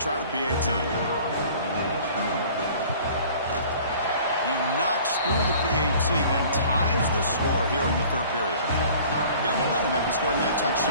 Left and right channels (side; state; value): both; inverted; correlation -0.48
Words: the PAT. He knocks through the PAT and ties the score here in the third period. Got momentum after scoring that